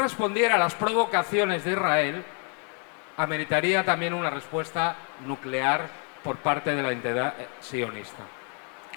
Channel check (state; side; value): quieter; right; 39.3 dB